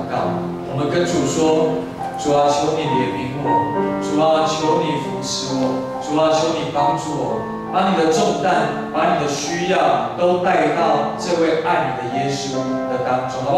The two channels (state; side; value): identical; both; correlation 1.00